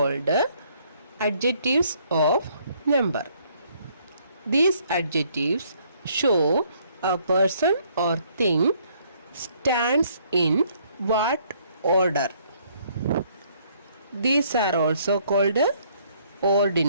adjectives of number. These adjectives show a person or thing stands in what order. These are also called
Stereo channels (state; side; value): inverted; both; correlation -0.65